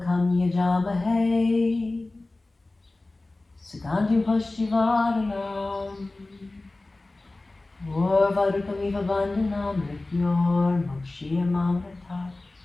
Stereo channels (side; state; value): right; quieter; 3.0 dB